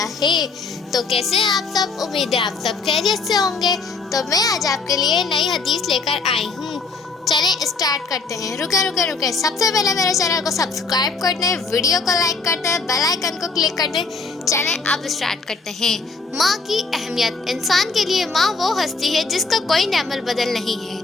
है। तो कैसे हैं आप सब? उम्मीद है आप सब खैरियत से होंगे। तो मैं आज आपके लिए नई हदीस लेकर आई हूँ। चलें स्टार्ट करते हैं। रुके सबसे पहले मेरे चैनल को सब्सक्राइब कर दें, वीडियो को लाइक कर दें, बेल आइकन को क्लिक कर दें। चलें अब स्टार्ट करते हैं। माँ की अहमियत। इंसान के लिए माँ वो हस्ती है जिसका कोई नेमल बदल नहीं है।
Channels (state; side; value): quieter; right; 4.2 dB